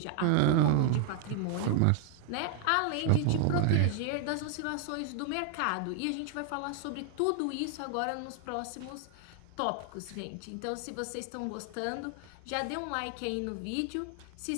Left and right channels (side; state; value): both; different; correlation 0.00